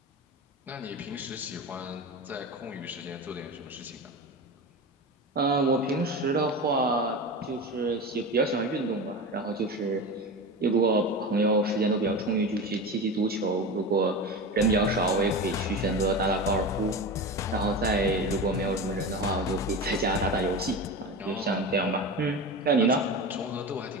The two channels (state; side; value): normal; both; correlation 0.26